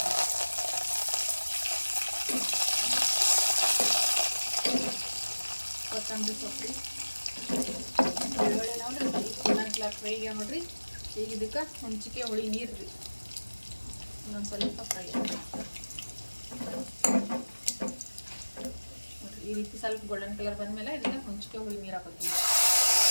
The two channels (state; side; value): inverted; both; correlation -1.00